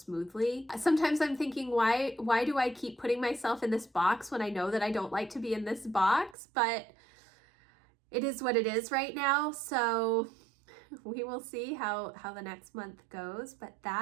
Sometimes I'm thinking, why do I keep putting myself in this box when I know that I don't like to be in this box? But it is what it is right now. So we will see how the next month goes. But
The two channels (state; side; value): drops out; left; at 6.4 s